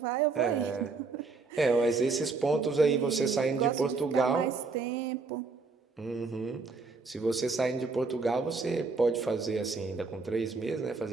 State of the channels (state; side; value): quieter; left; 4.2 dB